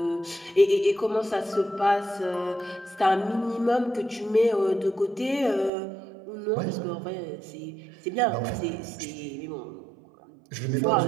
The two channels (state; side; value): drops out; left; at 5.7 s